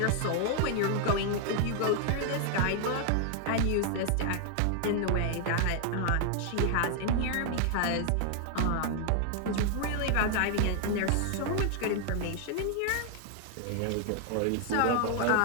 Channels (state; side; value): different; both; correlation 0.00